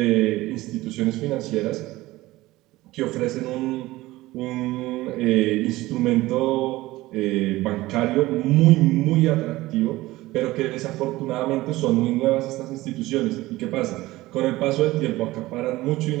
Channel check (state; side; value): quieter; left; 18.3 dB